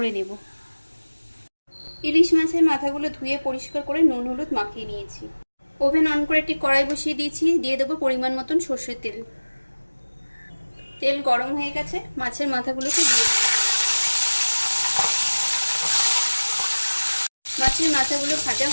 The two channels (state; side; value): inverted; both; correlation -1.00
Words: নেব। ইলিশ মাছের মাথাগুলো ধুয়ে পরিষ্কার করে নুন হলুদ মাখিয়ে নিয়েছি। ওভেন অন করে একটি কড়াই বসিয়ে দিয়েছি। দিয়ে দেবো পরিমাণ মতন সর্ষের তেল। তেল গরম হয়ে গেছে, মাছের মাথাগুলোকে দিয়ে দেবো। মাছের মাথাগুলো ভাজা